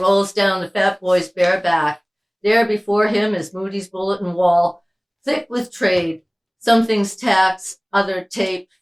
down the fat boy's bare back. There before him is Moody's bulletin wall, thick with trade. Some things tax, other taped.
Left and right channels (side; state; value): both; identical; correlation 1.00